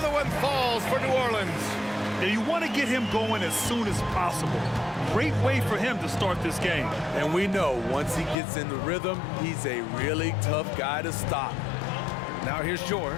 one falls for New Orleans. Now you want to get him going as soon as possible. Great way for him to start this game. And we know once he gets in the rhythm, he's a really tough guy to stop. Now here's George.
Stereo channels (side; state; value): right; drops out; at 8.3 s